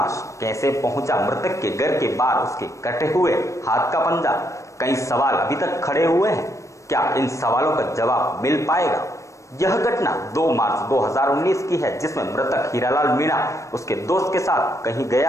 कैसे पहुंचा मृतक के घर के बाहर उसके कटे हुए हाथ का पंजा? कई सवाल अभी तक खड़े हुए हैं। क्या इन सवालों का जवाब मिल पाएगा? यह घटना 2 मार्च 2019 की है, जिसमें मृतक हीरालाल मीणा उसके दोस्त के साथ कहीं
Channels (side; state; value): right; late; 0.15 ms